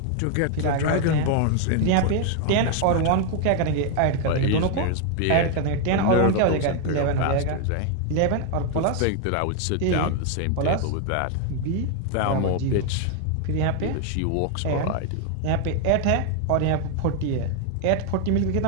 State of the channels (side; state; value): both; different; correlation 0.00